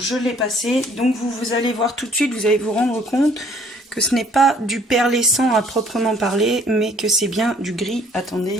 l'ai passé, donc vous allez voir tout de suite, vous allez vous rendre compte que ce n'est pas du perlescent à proprement parler, mais que c'est bien du gris.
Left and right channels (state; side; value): normal; both; correlation 0.59